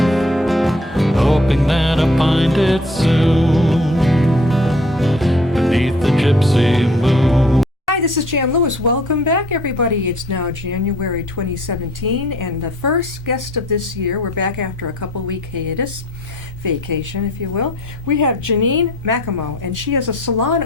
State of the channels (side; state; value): both; normal; correlation 0.54